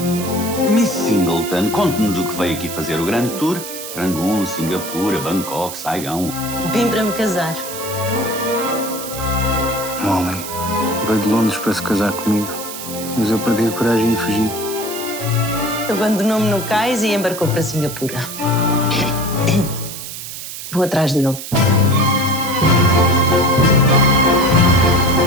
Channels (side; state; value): right; noise; hiss, 9 dB below the sound